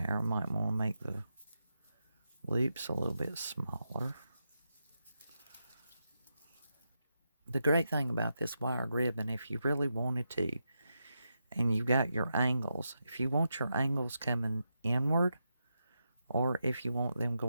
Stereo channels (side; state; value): both; inverted; correlation -0.86